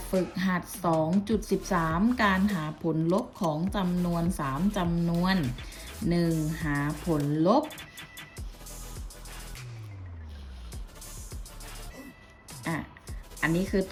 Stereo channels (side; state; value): both; identical; correlation 1.00